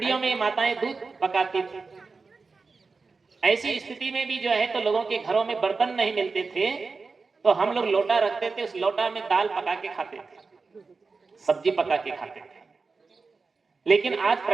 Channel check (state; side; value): quieter; left; 4.4 dB